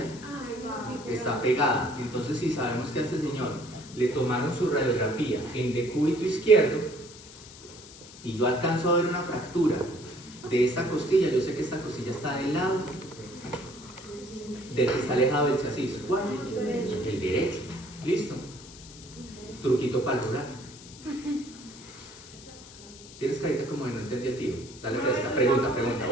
está pegada. Entonces, si sabemos que a este señor le tomaron su radiografía en decúbito izquierdo y yo alcanzo a ver una fractura de esta costilla, yo sé que esta costilla está del lado del que está alejado del chasis. ¿Cuál? El derecho. ¿Listo? Truquito para el rural. Tienes carita como de no entendí el tiro. Dale fresca. Pregunta.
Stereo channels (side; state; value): left; noise; hiss, 18 dB below the sound